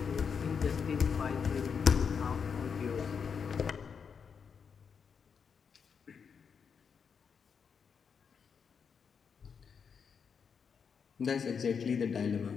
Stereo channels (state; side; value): quieter; right; 6.4 dB